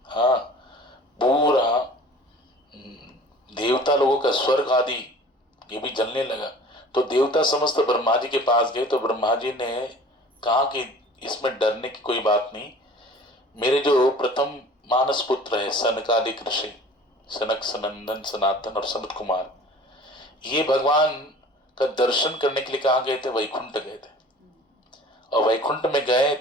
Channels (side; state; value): both; normal; correlation 0.45